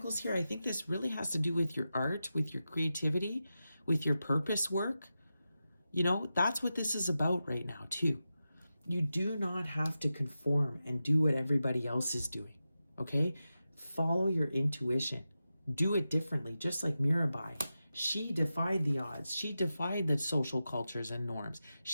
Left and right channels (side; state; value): both; inverted; correlation -0.92